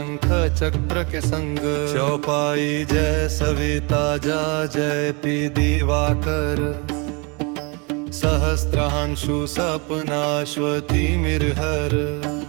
चक्र के संग चौपाई जय सविता जा जय पी दिवाकर सहस्त्रांशु सपनाश्वती मिरहर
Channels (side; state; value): left; quieter; 30.6 dB